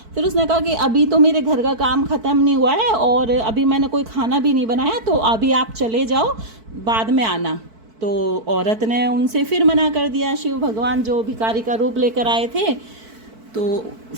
फिर उसने कहा कि अभी तो मेरे घर का काम ख़त्म नहीं हुआ है और अभी मैंने कोई खाना भी नहीं बनाया, तो अभी आप चले जाओ, बाद में आना। तो औरत ने उनसे फिर मना कर दिया। शिव भगवान जो भिखारी का रूप लेकर आए थे, तो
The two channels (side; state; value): left; late; 4.5 ms